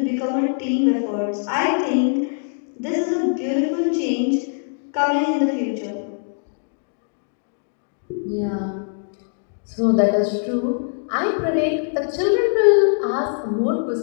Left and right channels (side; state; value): right; silent; digital silence